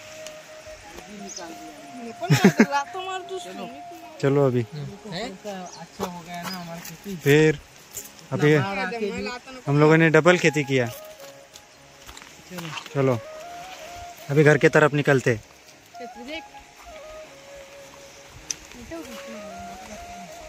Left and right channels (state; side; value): identical; both; correlation 1.00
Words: चलो अभी अच्छा हो गया ना हमारी खेती। फिर अभी हम लोगों ने डबल खेती किया। चलो अभी घर की तरफ निकलते।